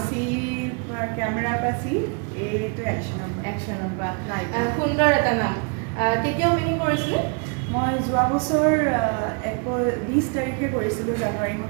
চি কেমেৰাৰ পৰা চি এইটো একশ্যনৰ পৰা সুন্দৰ এটা নাম কেতিয়া অপেনিং কৰিছিলে মই যোৱা বছৰ 20 তাৰিখে কৰিছিলোঁ জানুৱাৰী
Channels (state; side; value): quieter; left; 36.7 dB